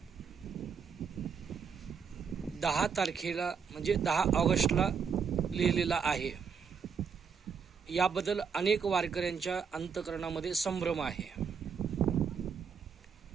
10 तारखेला म्हणजे 10 ऑगस्टला लिहिलेला आहे. याबद्दल अनेक वारकऱ्यांच्या अंतःकरणामध्ये संभ्रम आहे.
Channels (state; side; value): quieter; left; 6.4 dB